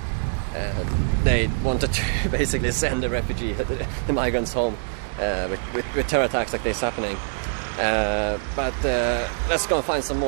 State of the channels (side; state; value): left; silent; 62 dB below the other